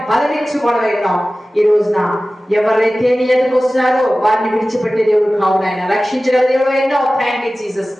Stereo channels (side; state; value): both; normal; correlation 0.96